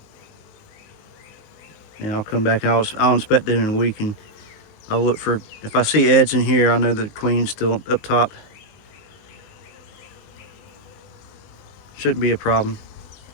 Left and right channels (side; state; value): right; late; 19 ms